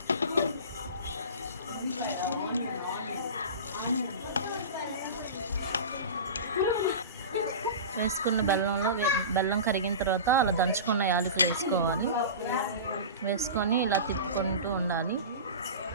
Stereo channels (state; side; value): inverted; both; correlation -0.31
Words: వేసుకున్న బెల్లం కరిగిన తర్వాత అలా దంచుకున్న యాలకులు వేసుకోవాలి. వేసుకొని ఇలా తిప్పుకుంటూ ఉండాలి.